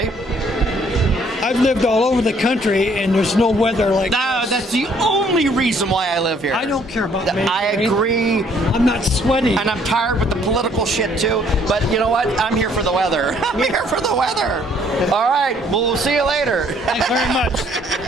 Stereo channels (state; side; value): normal; both; correlation 0.63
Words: I've lived all over the country, and there's no weather like No, this. that's the only reason why I live here. I don't care about May. I agree. I'm not sweaty. And I'm tired with the political shit too. But you know what? I'm here for the weather. I'm here for the weather. All right. Well, we'll see you later. Thanks very much.